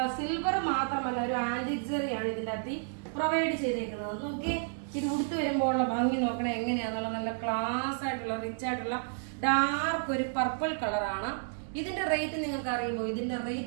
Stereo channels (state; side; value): silent; left; digital silence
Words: സിൽവർ മാത്രമല്ല, ഒരു ആന്റിക് ജെറിയാണ് ഇതിന്റെ അകത്ത് പ്രൊവൈഡ് ചെയ്തേക്കുന്നത്. നോക്കി, ഇത് ഉടുത്ത് വരുമ്പോഴുള്ള ഭംഗി നോക്കണേ എങ്ങനെയാന്നുള്ള നല്ല ക്ലാസ് ആയിട്ടുള്ള റിച്ച് ആയിട്ടുള്ള ഡാർക്ക് ഒരു പർപ്പിൾ കളറാണ്. ഇതിന്റെ റേറ്റ് നിങ്ങൾക്ക് അറിയുമോ? ഇതിന്റെ